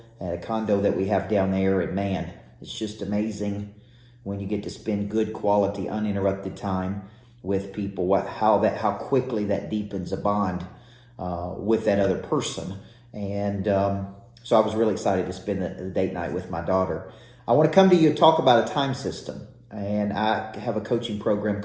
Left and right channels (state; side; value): identical; both; correlation 1.00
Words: at a condo that we have down there. And man, it's just amazing when you get to spend good quality, uninterrupted time with people, how quickly that deepens a bond with that other person. And so I was really excited to spend the date night with my daughter. I want to come to you and talk about a time system. And I have a coaching program